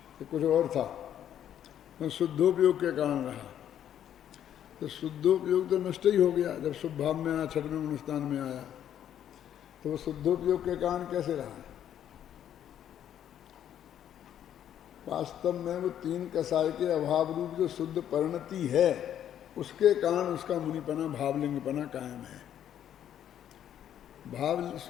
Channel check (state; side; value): quieter; right; 10.3 dB